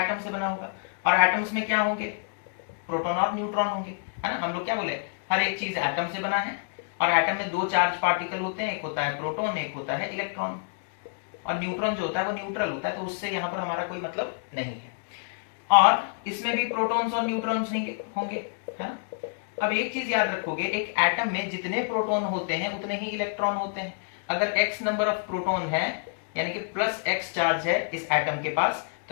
से बना होगा। और एटम्स में क्या होंगे? प्रोटॉन और न्यूट्रॉन होंगे, है ना। हम लोग क्या बोले, हर एक चीज एटम से बना है। और एटम में दो चार्ज पार्टिकल होते हैं, एक होता है प्रोटॉन, एक होता है इलेक्ट्रॉन। और न्यूट्रॉन जो होता है वो न्यूट्रल होता है, तो उससे यहाँ पर हमारा कोई मतलब नहीं है। और इसमें भी प्रोटॉन्स और न्यूट्रॉन्स नहीं होंगे, है ना। अब एक चीज याद रखोगे, एक एटम में जितने प्रोटॉन होते हैं उतने ही इलेक्ट्रॉन होते हैं। अगर x नंबर ऑफ प्रोटॉन है, यानी कि प्लस x चार्ज है इस एटम के पास,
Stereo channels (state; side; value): silent; right; digital silence